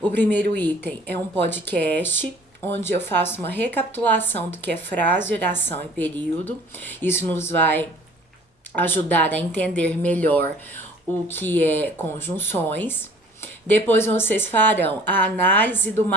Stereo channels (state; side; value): normal; both; correlation 0.50